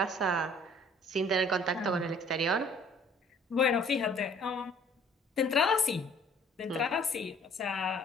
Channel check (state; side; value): normal; both; correlation 0.55